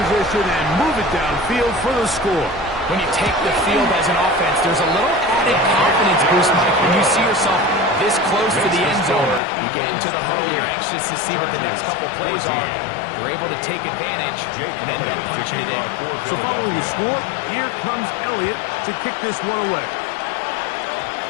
and move it downfield for the score. When you take the field as an offense, there's a little added confidence boost, Mike, when you see yourself this close to the end zone. You get into the huddle, you're anxious to see what the next couple plays are. You're able to take advantage and end up punching it in. So following the score, here comes Elliott to kick this one away.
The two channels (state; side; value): drops out; right; at 9.4 s